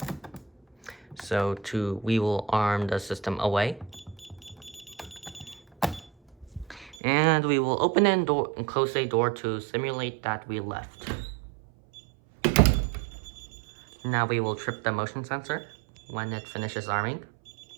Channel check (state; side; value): drops out; left; at 7.0 s